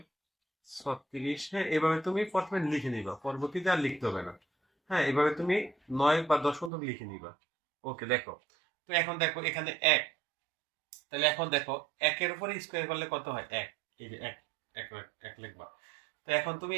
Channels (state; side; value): drops out; left; at 6.7 s